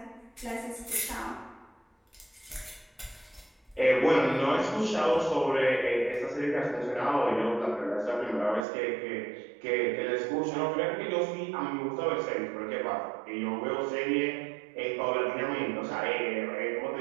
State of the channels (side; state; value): left; drops out; at 8.7 s